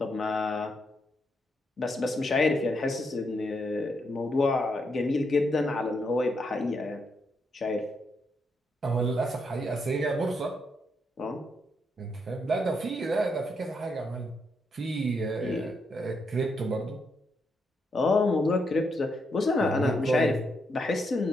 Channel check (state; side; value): normal; both; correlation 0.79